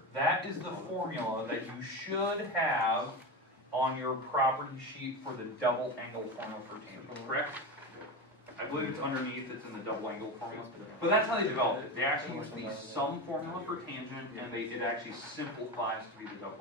That is the formula that you should have on your property sheet for the double angle formula for tangent, correct? I believe it's underneath, it's in the double angle formula. But that's how they developed it. They actually use the sum formula for tangent, and it actually simplifies to be the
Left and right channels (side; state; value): both; normal; correlation 0.21